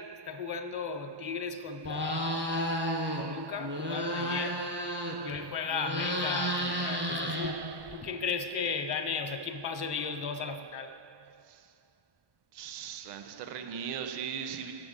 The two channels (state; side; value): late; left; 1.1 ms